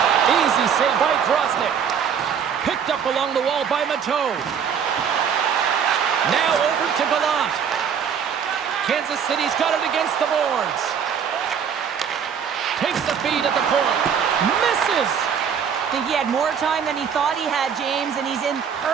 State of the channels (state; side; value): quieter; left; 7.5 dB